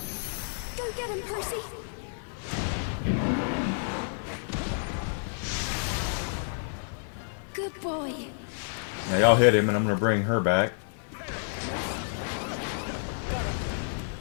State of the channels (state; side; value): silent; right; digital silence